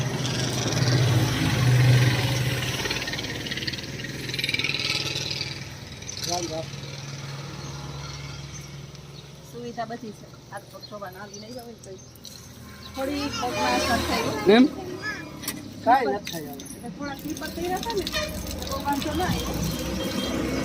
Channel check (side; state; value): both; identical; correlation 1.00